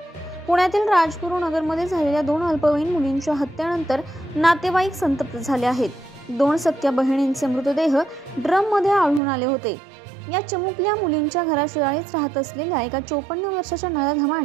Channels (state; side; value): drops out; left; at 9.2 s